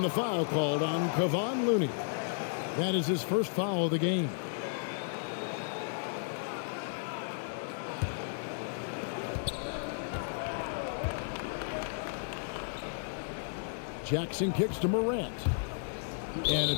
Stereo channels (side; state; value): right; silent; digital silence